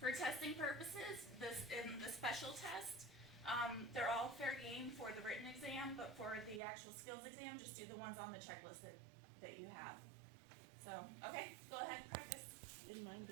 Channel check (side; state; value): left; drops out; at 6.6 s